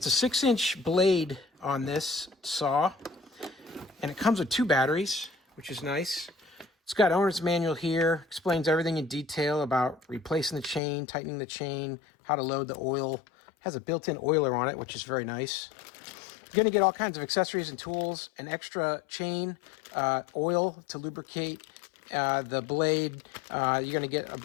a 6-inch blade on this saw, and it comes with 2 batteries, which is nice. It's got owner's manual here, explains everything in detail about replacing the chain, tightening the chain, how to load the oil. It has a built-in oiler on it, which is very nice. You're going to get all kinds of accessories and tools, an extra chain, oil to lubricate the blade. You're going to get a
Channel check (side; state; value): right; drops out; at 10.8 s